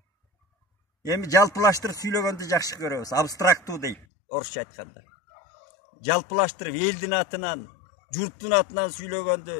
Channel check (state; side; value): drops out; right; at 4.0 s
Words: Эми жалпылаштырып сүйлөгөндү жакшы көрөбүз, абстрактуу дейт орусча айтканда. Жалпылаштырып элдин атынан, журттун атынан